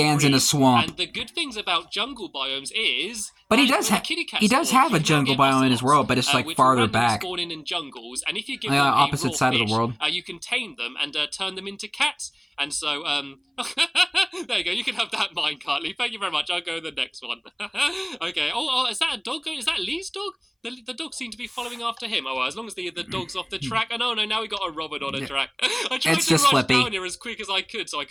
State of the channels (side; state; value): both; identical; correlation 1.00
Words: in a swamp. And the good things about jungle biomes is, but he does have a jungle biome in his world, but it's like farther back. Spawning in jungles, and if you give them opposite side fish, of the world, you can tame them and turn them into cats. And so, there you go. You can have that minecart, Lee. Thank you very much. I'll go to the next one. Okay. Oh, is that a dog? Is that Lee's dog? The dog seemed to be following after him. Oh, well, as long as the dog's off the track. Oh, no, now we got a Robin on a track. I tried to rush down here as quick as I could so I